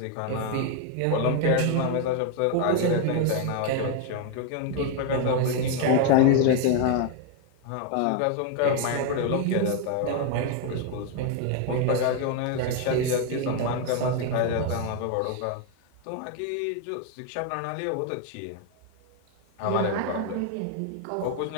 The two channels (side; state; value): both; different; correlation 0.01